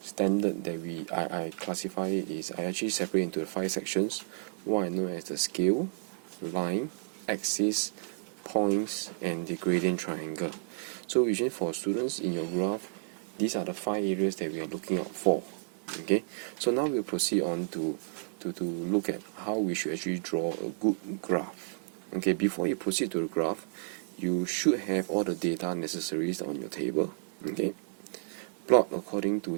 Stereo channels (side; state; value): left; silent; 57 dB below the other